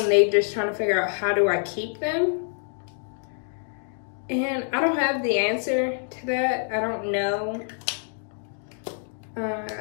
they just trying to figure out, how do I keep them? And I don't have the answer to that. I don't know.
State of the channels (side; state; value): right; silent; 61 dB below the other